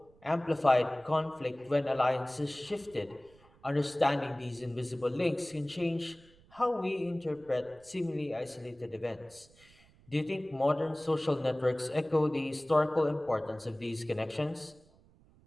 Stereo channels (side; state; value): right; noise; rumble, 28 dB below the sound